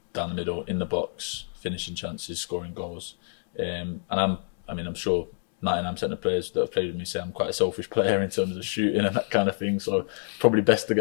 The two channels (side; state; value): right; silent; 60 dB below the other